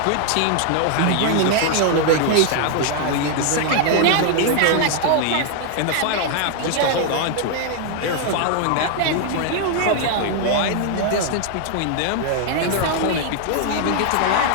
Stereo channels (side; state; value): both; different; correlation 0.00